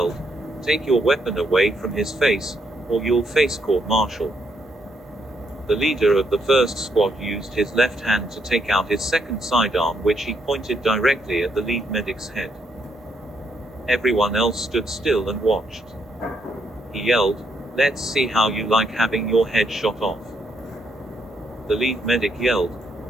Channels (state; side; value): normal; both; correlation 0.76